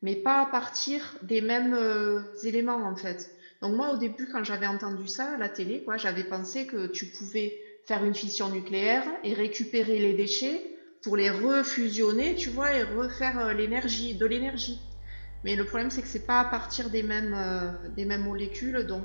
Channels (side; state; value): both; inverted; correlation -1.00